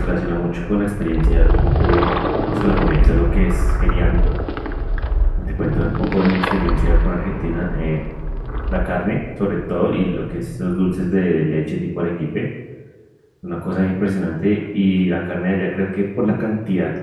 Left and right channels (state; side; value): identical; both; correlation 1.00